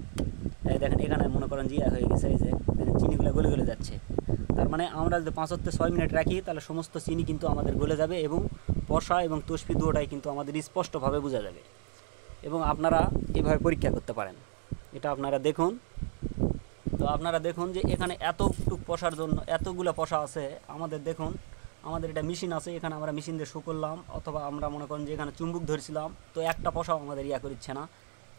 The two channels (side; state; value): left; silent; digital silence